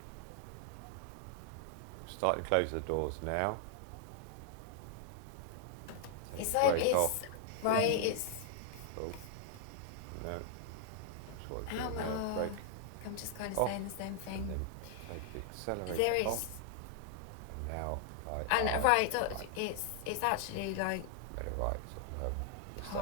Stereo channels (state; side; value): different; both; correlation 0.00